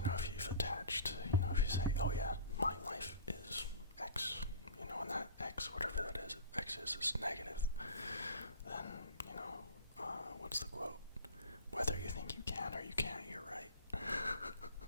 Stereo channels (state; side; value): inverted; both; correlation -0.39